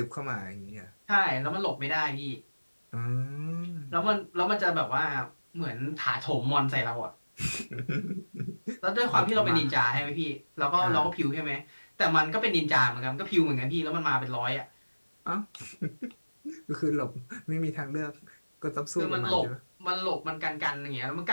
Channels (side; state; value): both; inverted; correlation -1.00